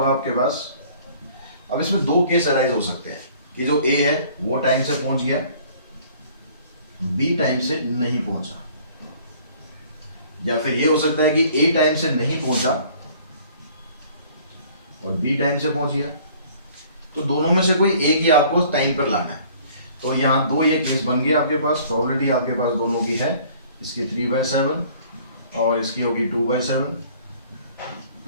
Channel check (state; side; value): inverted; both; correlation -0.54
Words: आपके पास, अब इसमें 2 केस अराइज हो सकते हैं कि जो ए है वो टाइम से पहुंच गया, बी टाइम से नहीं पहुंचा, या फिर ये हो सकता है कि ए टाइम से नहीं पहुंचा और बी टाइम से पहुंच गया। तो दोनों में से कोई एक ही आपको टाइम पर लाना है। तो यहाँ 2 ये केस बन गया आपके पास, प्रोबेबिलिटी आपके पास दोनों की है, इसकी 3/7 और इसकी होगी 2/7